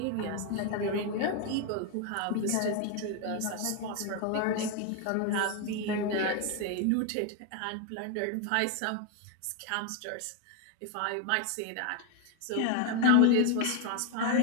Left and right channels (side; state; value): both; different; correlation 0.01